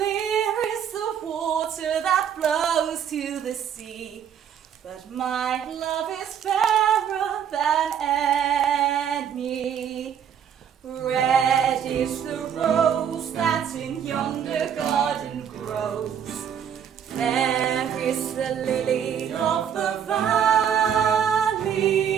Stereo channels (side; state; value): left; quieter; 8.5 dB